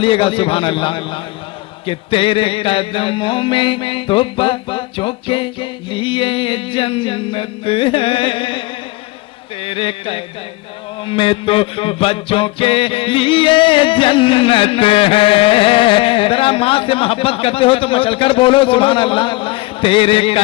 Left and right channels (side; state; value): right; quieter; 21.2 dB